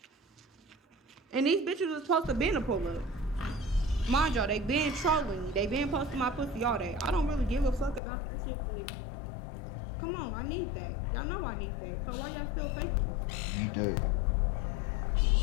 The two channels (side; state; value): right; drops out; at 8.0 s